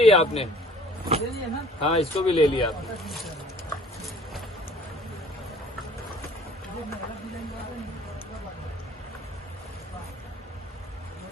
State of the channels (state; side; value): normal; both; correlation 0.52